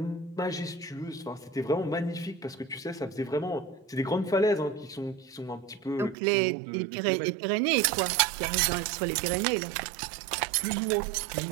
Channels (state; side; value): drops out; left; at 6.2 s